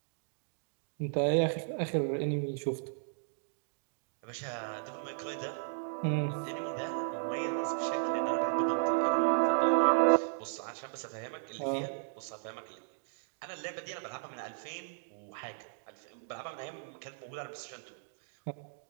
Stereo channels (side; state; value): left; silent; digital silence